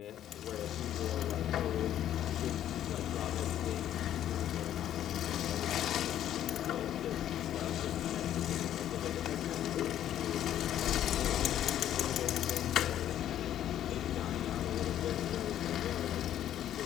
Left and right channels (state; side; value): quieter; right; 11.3 dB